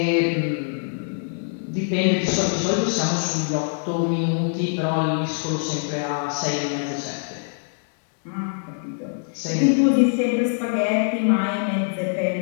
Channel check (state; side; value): silent; right; digital silence